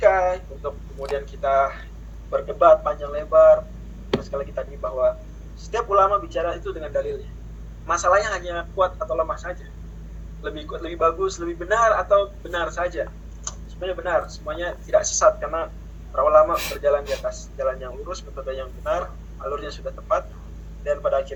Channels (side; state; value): both; identical; correlation 1.00